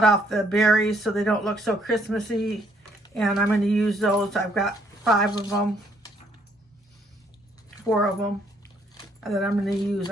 off the berries so they don't look so Christmassy. And I'm going to use those. I've got 5 of them. 4 of them. That I'm going to use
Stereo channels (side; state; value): both; normal; correlation 0.68